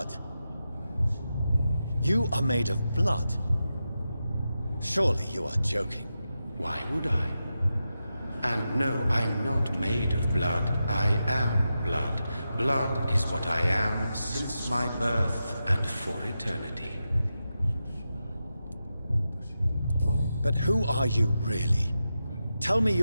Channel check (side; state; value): both; inverted; correlation -0.90